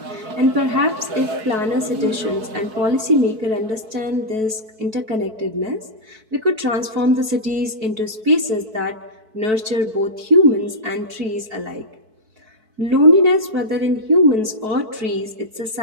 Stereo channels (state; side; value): late; left; 4.6 ms